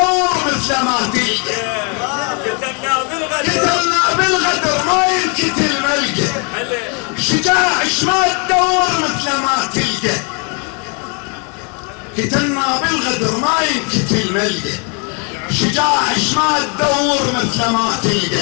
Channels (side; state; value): right; quieter; 36.4 dB